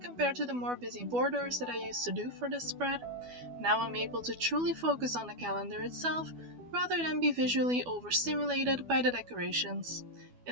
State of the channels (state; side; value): late; left; 12 ms